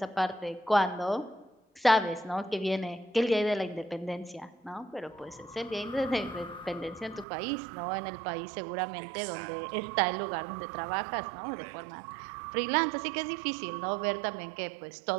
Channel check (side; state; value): left; drops out; at 7.2 s